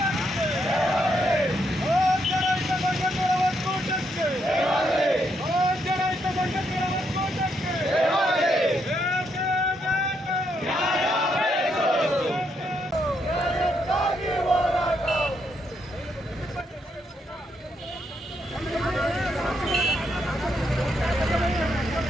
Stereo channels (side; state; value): both; normal; correlation 0.77